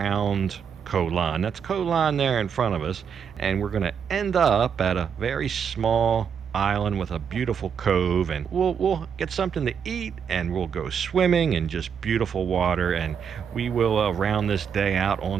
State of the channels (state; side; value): quieter; left; 7.3 dB